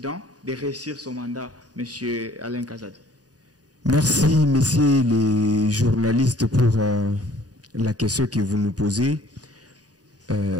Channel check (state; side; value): late; left; 0.68 ms